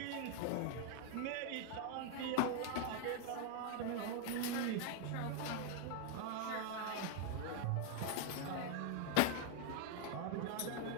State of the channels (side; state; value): both; different; correlation 0.00